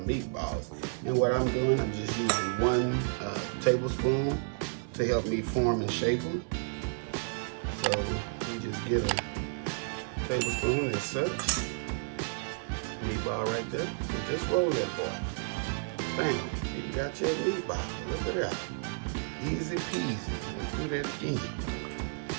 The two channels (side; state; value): left; silent; 57 dB below the other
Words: And what I'm doing, I'm just using 1 tablespoon to help me form and shape them. So you just get a tablespoon as such. Meatball right there. And just roll that boy. Bam, you got your meatball. Look at that. Easy peasy. Let's do that again.